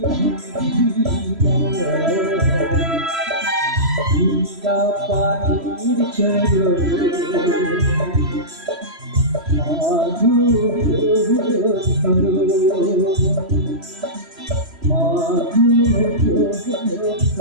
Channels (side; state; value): left; late; 3.1 ms